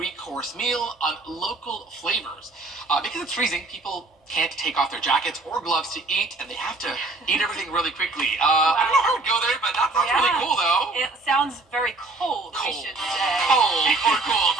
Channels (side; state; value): left; quieter; 3.2 dB